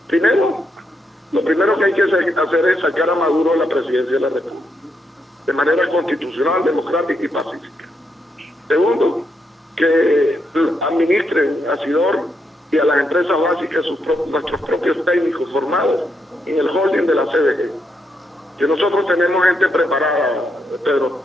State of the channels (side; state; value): both; normal; correlation 0.80